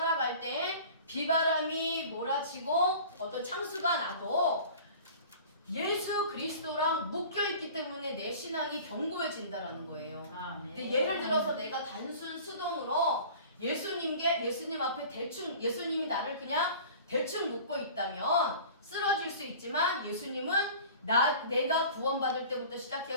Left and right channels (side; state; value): both; inverted; correlation -0.42